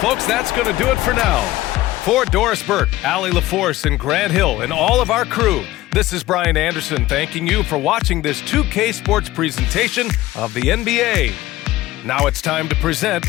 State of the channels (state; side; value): quieter; right; 16.7 dB